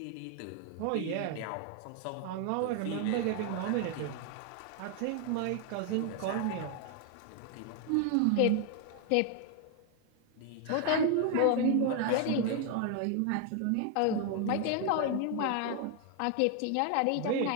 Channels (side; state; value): both; different; correlation 0.00